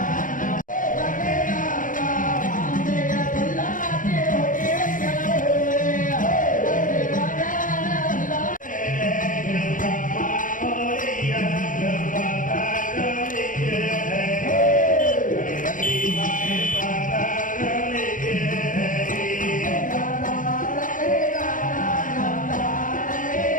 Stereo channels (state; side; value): late; right; 0.38 ms